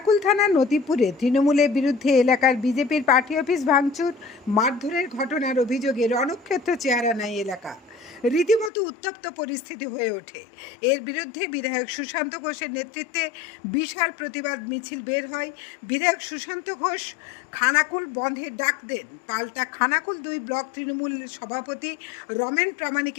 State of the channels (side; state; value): right; drops out; at 8.7 s